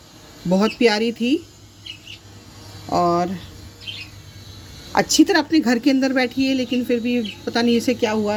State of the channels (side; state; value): both; identical; correlation 1.00